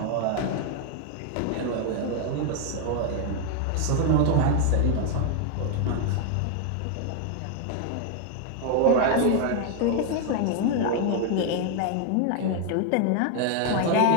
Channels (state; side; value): different; both; correlation 0.00